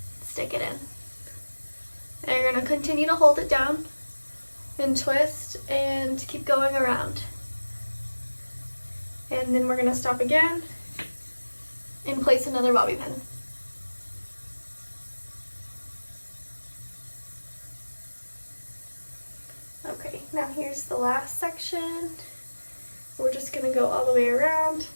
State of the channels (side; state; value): both; inverted; correlation -1.00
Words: Stick it in. And you're going to continue to hold it down and twist and keep going around. And then we're going to stop again and place another bobby pin. Okay, now here's the last section. We're just going to go all the way around